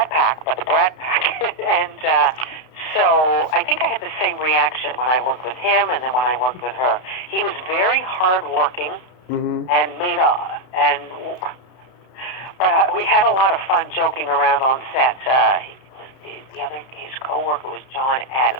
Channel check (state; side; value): late; right; 32 ms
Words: Pack, but the Brad Pack. And so I think I had the same reaction when I worked with him and then when I worked with her. He was very hardworking and but we had a lot of fun joking around on set. His co-worker was John